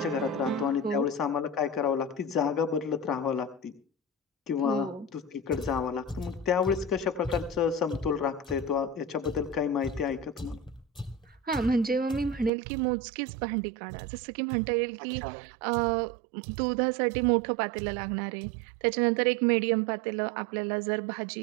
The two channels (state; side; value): drops out; left; at 12.5 s